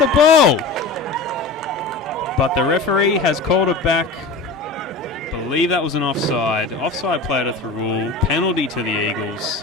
ball. But the referee has called it back. I believe that was an offside. Offside play to Thirroul. Penalty to the Eagles.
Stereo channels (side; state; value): right; quieter; 3.6 dB